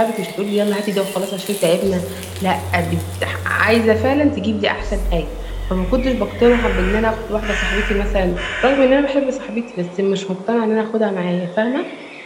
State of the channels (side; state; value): both; identical; correlation 1.00